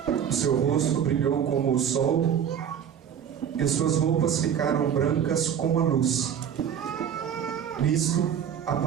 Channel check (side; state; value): left; quieter; 8.6 dB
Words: O seu rosto brilhou como o sol, e suas roupas ficaram brancas como a luz. Nisto